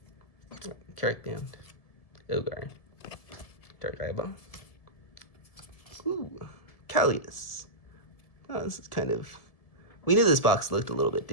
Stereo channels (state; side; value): late; right; 1.7 ms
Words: Carrick Band. Ogar. Dark Eyeball. Ooh, Callius. Oh, this is kind of... We knew this box looked a little bit